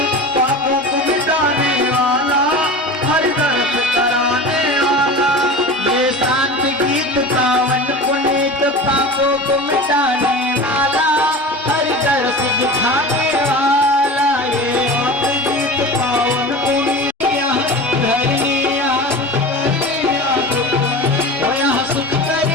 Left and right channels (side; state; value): both; normal; correlation 0.32